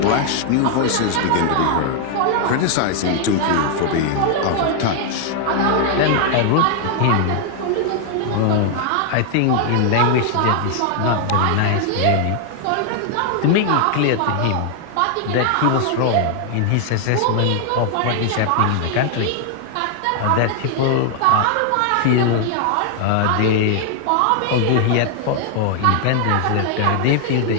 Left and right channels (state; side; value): different; both; correlation 0.00